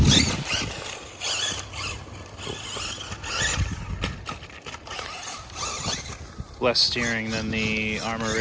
less steering than the Armor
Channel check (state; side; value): identical; both; correlation 1.00